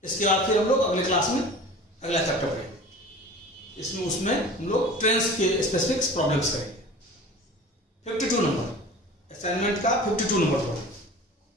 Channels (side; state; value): both; normal; correlation 0.40